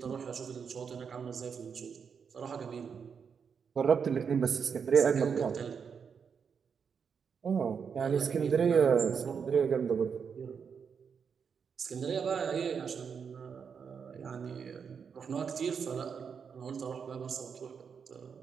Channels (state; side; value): quieter; left; 6.5 dB